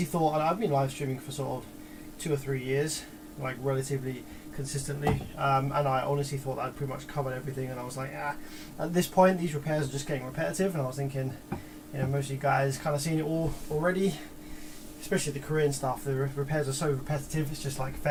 thought, and I've been live streaming for sort of 2 or 3 years, like relatively consistently, and I honestly thought that I'd pretty much covered everything, and I was like, at this point these repairs are just getting repetitive, and I was thinking, you know, most of you guys kind of seen it all already, especially the Korean stuff. The repairs are so repetitive. It's just like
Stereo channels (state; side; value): identical; both; correlation 1.00